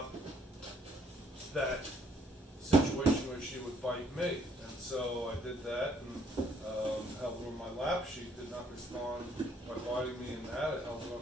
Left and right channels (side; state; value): both; normal; correlation 0.65